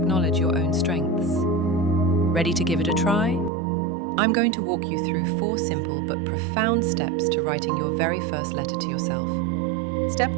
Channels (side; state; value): left; drops out; at 3.5 s